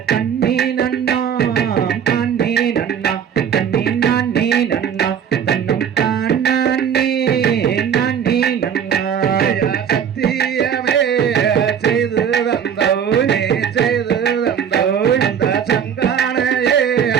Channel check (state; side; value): quieter; left; 8.2 dB